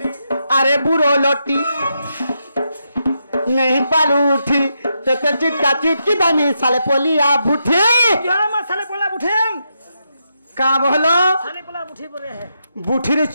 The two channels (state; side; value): inverted; both; correlation -0.83